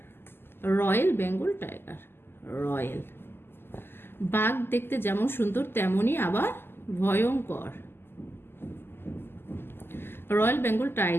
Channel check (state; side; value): late; right; 0.11 ms